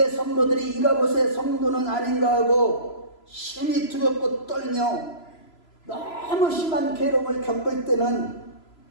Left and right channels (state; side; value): late; right; 3.0 ms